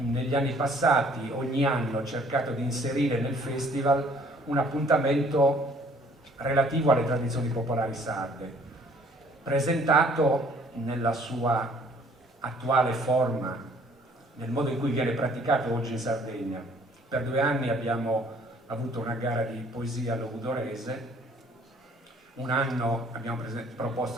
anni passati ogni anno cercato di inserire nel festival un appuntamento relativo alle tradizioni popolari sarde, presentato nella sua attuale forma, nel modo in cui viene praticato oggi in Sardegna. Per 2 anni abbiamo avuto una gara di poesia logudorese, un anno abbiamo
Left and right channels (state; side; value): normal; both; correlation 0.58